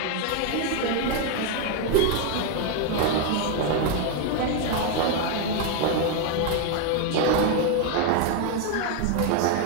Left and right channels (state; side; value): different; both; correlation 0.01